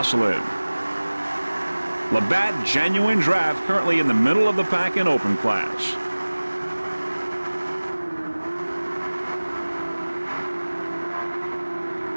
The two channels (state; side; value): inverted; both; correlation -1.00